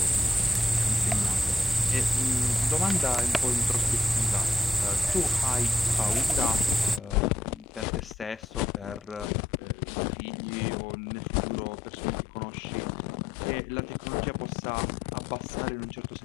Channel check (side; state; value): right; drops out; at 9.3 s